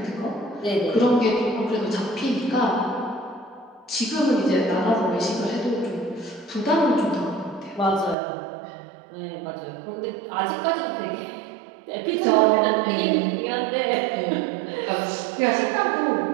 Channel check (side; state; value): left; drops out; at 8.2 s